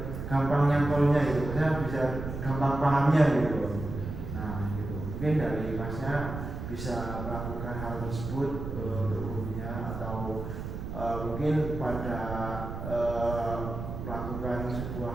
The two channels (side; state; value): right; noise; rumble, 7 dB below the sound